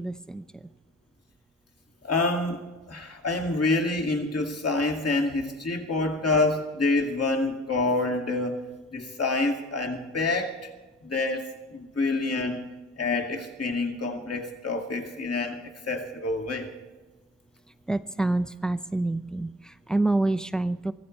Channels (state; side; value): normal; both; correlation 0.44